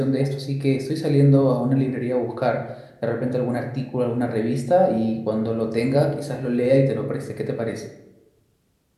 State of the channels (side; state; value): both; identical; correlation 1.00